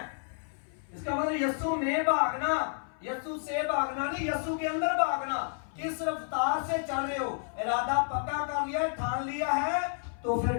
इसका मतलब यीशु में भागना, यीशु से भागना नहीं, यीशु के अंदर भागना। किस रफ्तार से चल रहे हो? इरादा पक्का कर लिया, ठान लिया है, तो फिर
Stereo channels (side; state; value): right; silent; 57 dB below the other